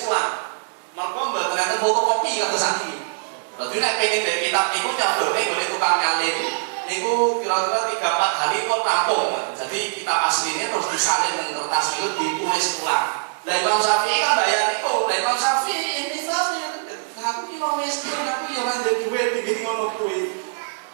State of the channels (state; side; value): silent; left; 63 dB below the other